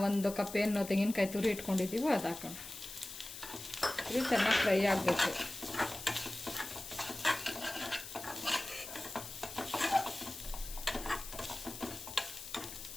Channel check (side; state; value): left; noise; hiss, 11 dB below the sound